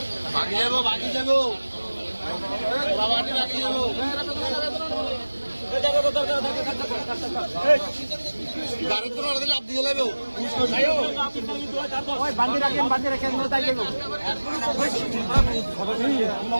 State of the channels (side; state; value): both; inverted; correlation -1.00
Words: বাকি যাবো বাকি যাবো বাবাটি বাকি যাবো গাড়ি তো না লাভ দিয়ে যাবে ওই বাঁধি রাখেন তাই যাবো